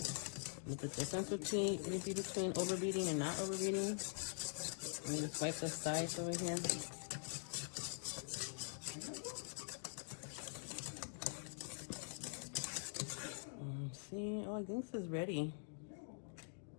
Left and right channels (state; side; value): silent; right; digital silence